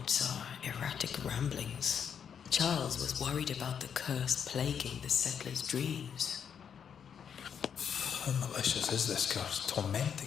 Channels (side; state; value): right; quieter; 7.7 dB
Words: are erratic ramblings. Charles was worried about the curse plaguing the settlers' dreams. How malicious is this curse,